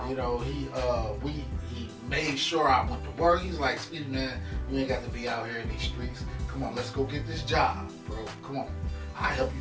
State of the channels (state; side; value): identical; both; correlation 1.00